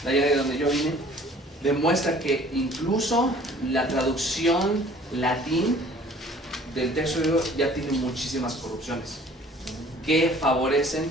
de allá de donde yo vine, demuestra que incluso la traducción latín del texto griego ya tiene muchísimas corrupciones que favorecen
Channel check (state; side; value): normal; both; correlation 0.52